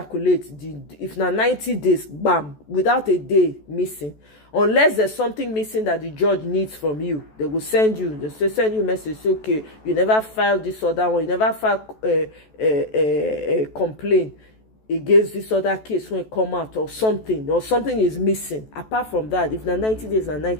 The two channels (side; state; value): right; late; 14 ms